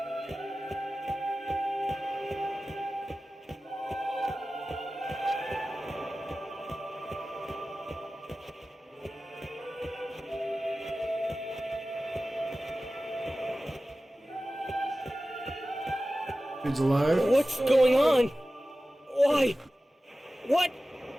Dude's alive. What's going on? Why? What?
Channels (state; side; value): normal; both; correlation 0.95